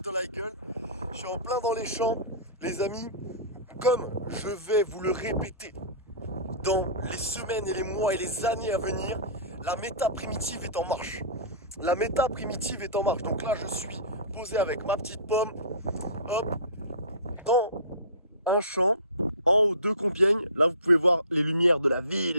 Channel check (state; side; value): inverted; both; correlation -0.33